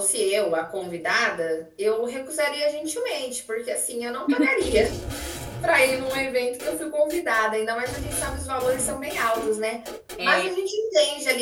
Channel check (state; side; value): identical; both; correlation 1.00